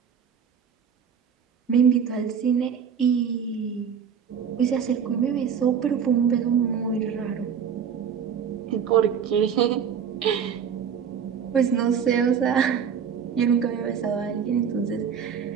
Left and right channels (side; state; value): left; quieter; 7.5 dB